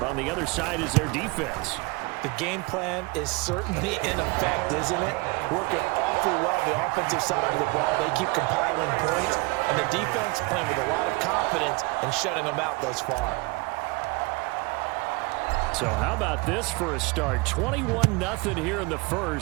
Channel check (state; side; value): quieter; left; 26.1 dB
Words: on the other side is their defense. The game plan is certainly in effect, isn't it? Working awfully well the offensive side of the ball. They keep compiling points, and the defense playing with a lot of confidence and shutting them out thus far. So how about this for a start? 21-0 here in the